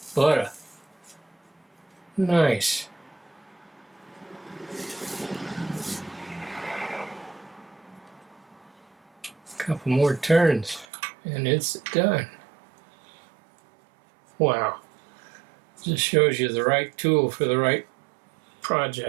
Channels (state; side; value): drops out; left; at 10.9 s